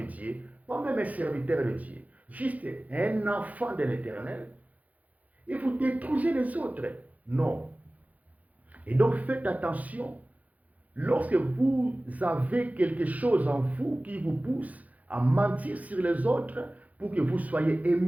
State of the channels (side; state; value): left; late; 0.075 ms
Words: Dieu, pas même un serviteur de Dieu, juste un enfant de l'Éternel, et vous détruisez les autres. Non. Et donc faites attention, lorsque vous avez quelque chose en vous qui vous pousse à mentir sur les autres pour que vous soyez